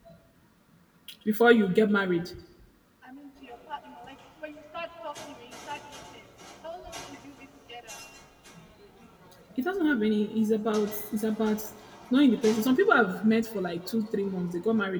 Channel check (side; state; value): both; identical; correlation 1.00